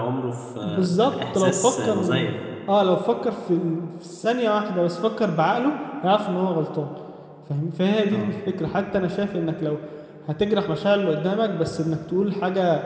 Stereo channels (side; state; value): both; identical; correlation 1.00